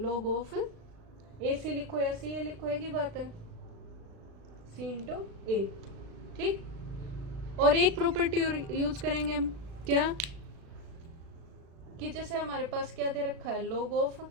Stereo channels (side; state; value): left; late; 36 ms